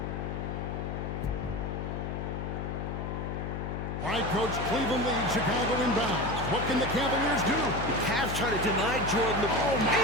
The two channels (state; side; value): noise; left; hum, 4 dB below the sound